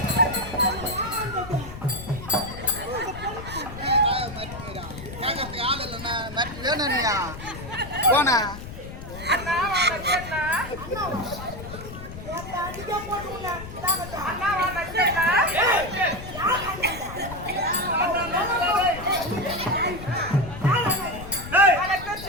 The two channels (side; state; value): left; noise; rumble, 12 dB below the sound